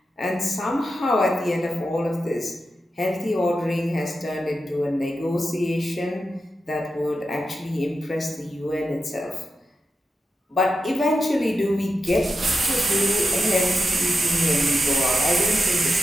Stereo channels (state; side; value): normal; both; correlation 0.89